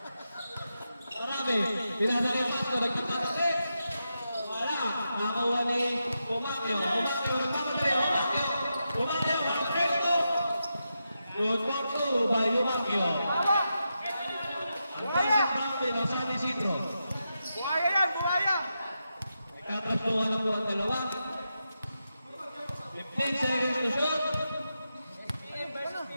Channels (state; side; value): inverted; both; correlation -0.87